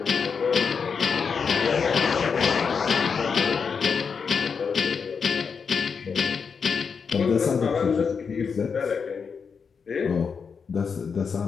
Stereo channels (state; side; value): quieter; right; 5.9 dB